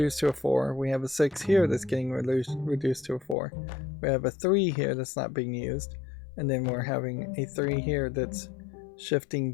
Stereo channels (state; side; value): drops out; right; at 3.4 s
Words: to a 4. We have a 6 here that's getting reduced to a 4. We have a 3 here that's not being used. And then we're having a 3 here that's shifting